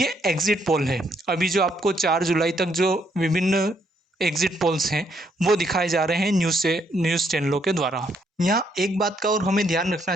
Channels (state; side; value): normal; both; correlation 0.73